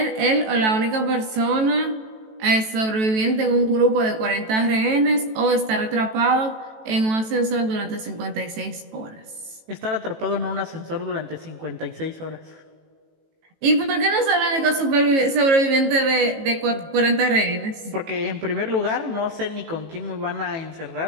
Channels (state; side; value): late; left; 18 ms